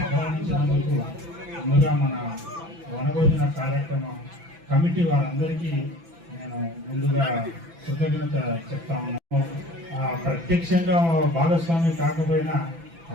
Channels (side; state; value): left; late; 6.0 ms